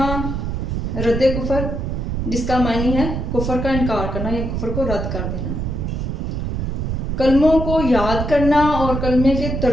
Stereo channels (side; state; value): right; noise; rumble, 2 dB below the sound